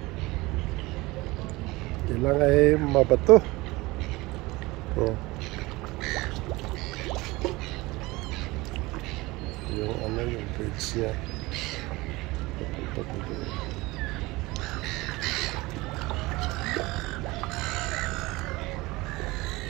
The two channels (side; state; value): left; quieter; 21.5 dB